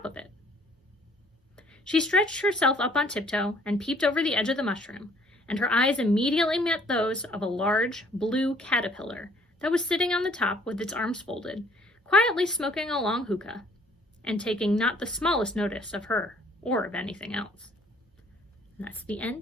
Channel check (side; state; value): both; normal; correlation 0.59